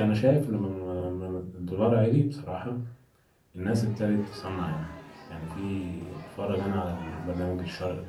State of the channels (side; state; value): both; identical; correlation 1.00